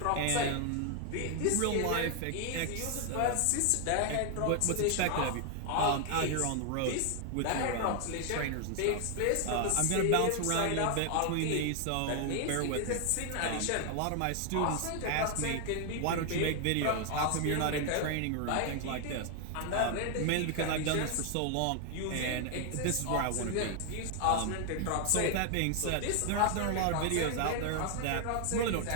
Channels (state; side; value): different; both; correlation 0.00